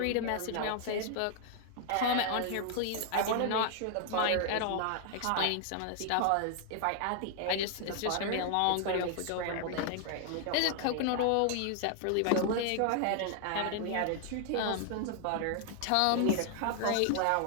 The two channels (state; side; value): different; both; correlation 0.00